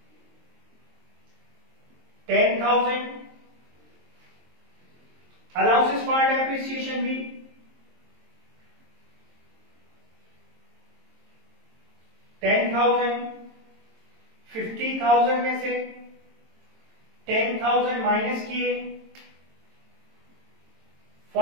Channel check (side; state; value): left; late; 22 ms